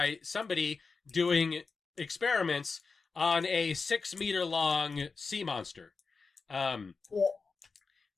somebody doing experiments on a 6-meter-long sea monster,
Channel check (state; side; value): quieter; right; 4.6 dB